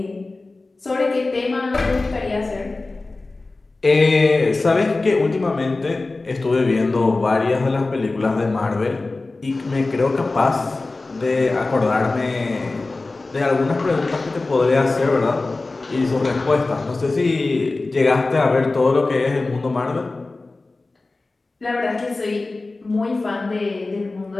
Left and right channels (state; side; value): quieter; right; 3.4 dB